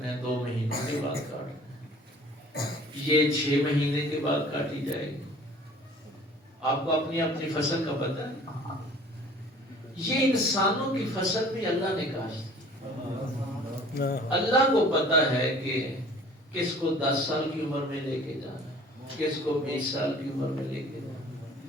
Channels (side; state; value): both; normal; correlation 0.49